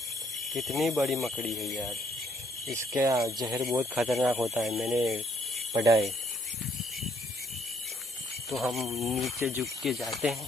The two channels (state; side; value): normal; both; correlation 0.68